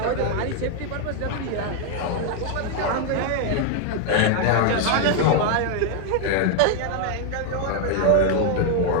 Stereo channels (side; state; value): both; different; correlation 0.00